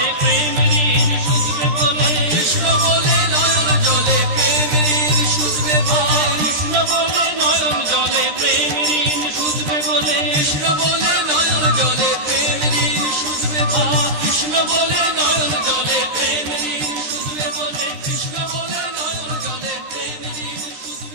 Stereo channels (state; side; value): late; left; 13 ms